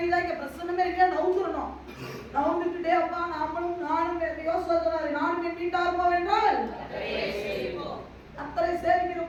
இங்க பிரசன்னமே இருக்கா? நவுந்துடணும். நவுந்துட்டே அப்பா நானும் யோசிச்சாரு, நானும் என் வீட்டார் போவென்றால் அத்தனை சேவிக்கிற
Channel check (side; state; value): both; identical; correlation 1.00